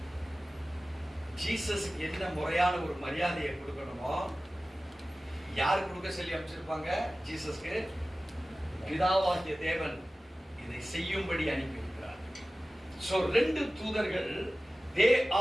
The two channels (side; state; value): both; normal; correlation 0.96